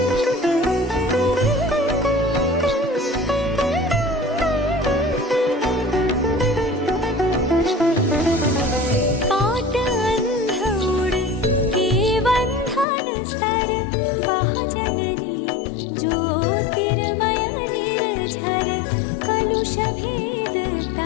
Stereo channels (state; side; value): drops out; right; at 12.9 s